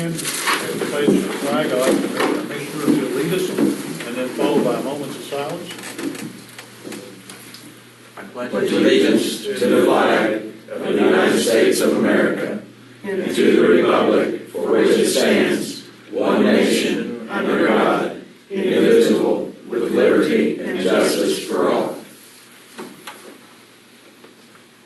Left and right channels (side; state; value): both; identical; correlation 1.00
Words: and pledge the flag. I'd like the Commissioner to lead us and then followed by moments of silence. I pledge allegiance to the flag of the United States of America and to the republic for which it stands, one nation, under God, indivisible, with liberty and justice for all.